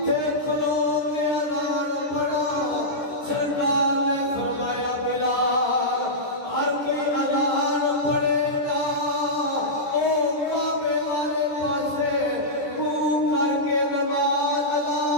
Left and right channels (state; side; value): late; right; 13 ms